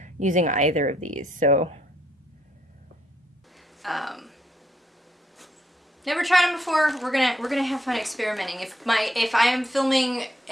using either of these. So never tried them before. We're gonna have fun experimenting. If I am filming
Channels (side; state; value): both; normal; correlation 0.73